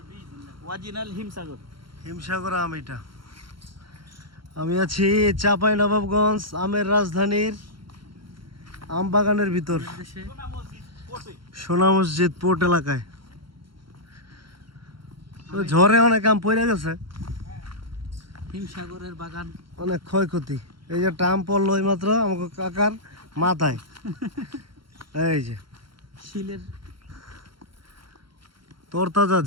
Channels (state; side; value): late; left; 0.73 ms